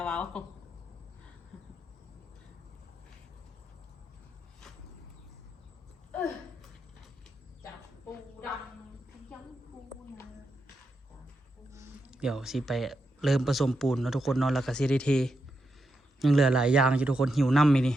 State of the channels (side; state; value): both; normal; correlation 0.84